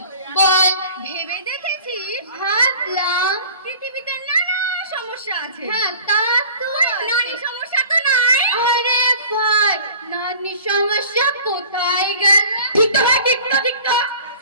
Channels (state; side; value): inverted; both; correlation -0.46